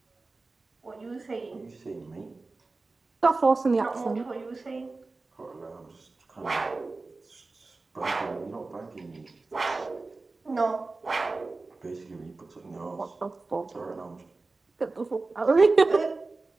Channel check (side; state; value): left; quieter; 3.6 dB